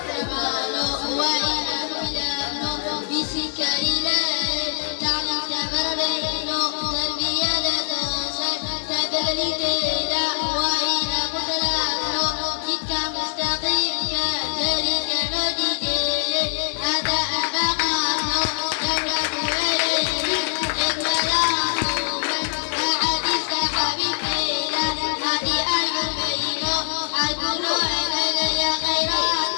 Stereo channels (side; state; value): right; silent; 63 dB below the other